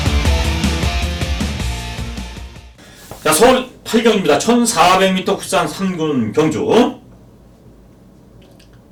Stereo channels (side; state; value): both; identical; correlation 1.00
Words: 자, 서울 8경입니다. 1400m 국산 3군 경주.